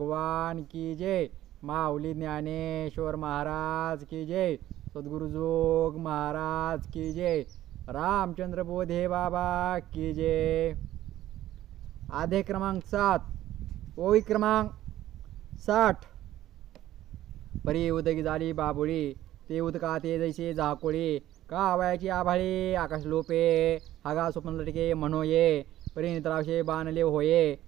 की जय। माऊली ज्ञानेश्वर महाराज की जय। सद्गुरु जोग महाराज की जय। रामचंद्र बोधे बाबा की जय। आधे क्रमांक 7 ओवी क्रमांक 60। परी उदगी झाली बाबुळी ते उदका ते जैसे झाकोळी का वयाची आभाळी आकाश लोपे हागा स्वप्न लटके म्हणो ये परी निद्रावशे बाणले होये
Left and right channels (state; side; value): quieter; left; 13.8 dB